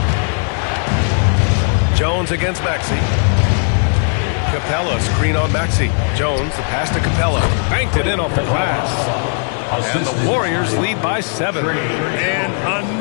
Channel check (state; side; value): silent; right; 55 dB below the other